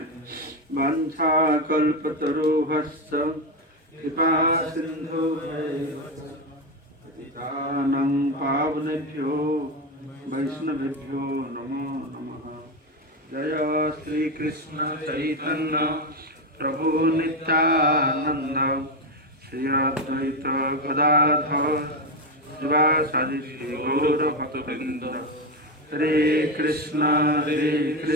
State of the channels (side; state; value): both; normal; correlation 0.12